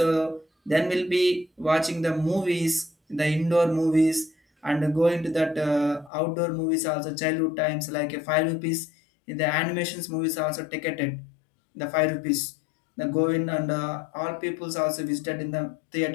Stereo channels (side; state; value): right; drops out; at 6.1 s